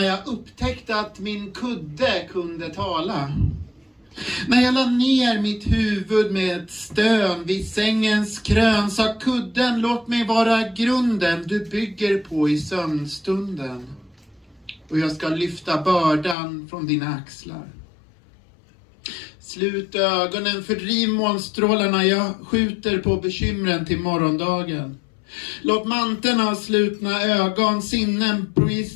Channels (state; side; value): drops out; right; at 16.4 s